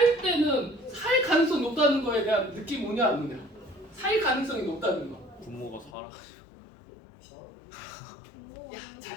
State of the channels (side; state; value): right; drops out; at 5.9 s